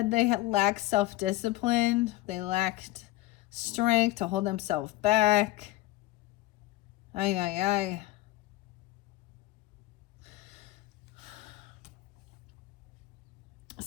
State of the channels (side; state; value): right; quieter; 17.6 dB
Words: they lack self-discipline. They lacked strength to hold themselves back. Ay ay ay.